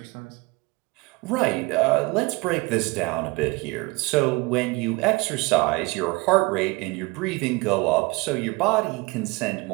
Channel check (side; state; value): left; quieter; 25.1 dB